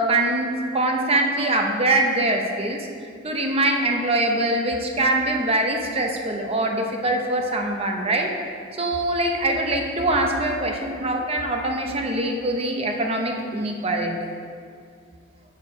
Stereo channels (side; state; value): both; normal; correlation -0.03